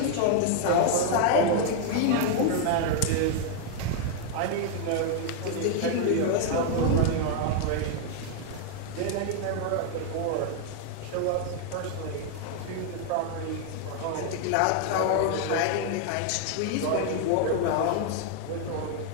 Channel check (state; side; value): different; both; correlation 0.00